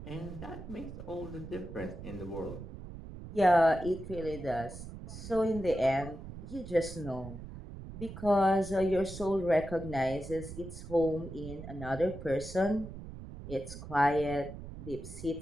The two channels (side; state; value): right; noise; rumble, 11 dB below the sound